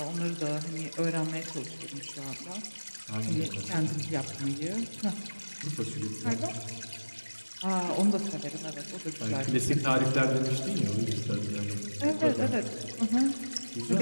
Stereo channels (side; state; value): both; inverted; correlation -1.00